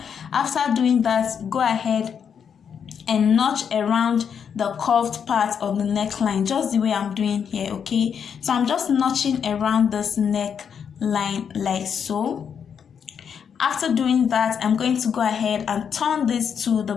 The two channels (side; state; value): right; quieter; 7.4 dB